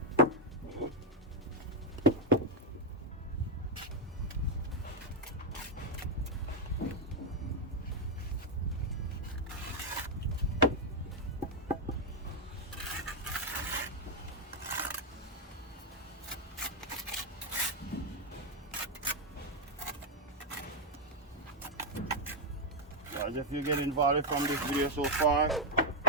Guys, if you get involved from this video so far,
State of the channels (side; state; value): both; normal; correlation 0.02